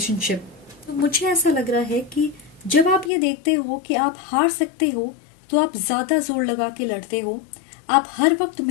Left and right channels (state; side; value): drops out; right; at 3.1 s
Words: तो मुझे ऐसा लग रहा है कि जब आप ये देखते हो कि आप हार सकते हो, तो आप ज्यादा जोर लगा के लड़ते हो। आप हर वक्त